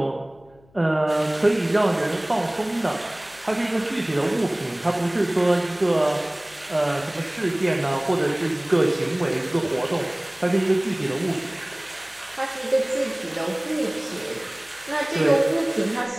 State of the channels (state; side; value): noise; left; hum, 29 dB below the sound